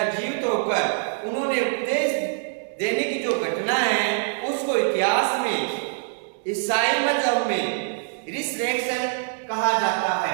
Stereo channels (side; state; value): left; silent; 62 dB below the other